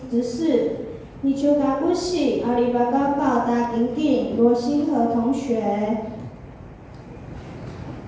执事，尼丘卡布西阿里巴高高达丁丁罗星河同学。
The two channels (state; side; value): identical; both; correlation 1.00